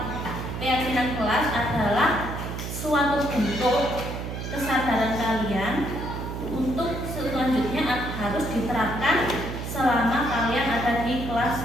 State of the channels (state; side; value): noise; right; hum, 6 dB below the sound